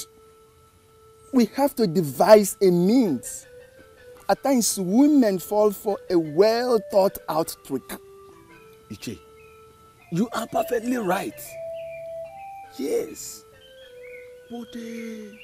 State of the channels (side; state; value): both; identical; correlation 1.00